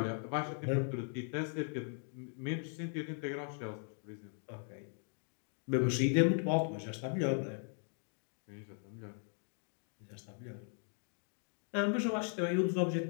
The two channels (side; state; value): right; silent; 52 dB below the other